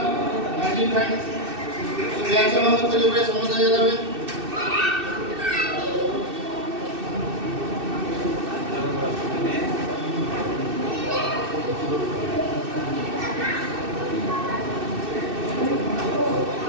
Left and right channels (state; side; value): late; left; 2.6 ms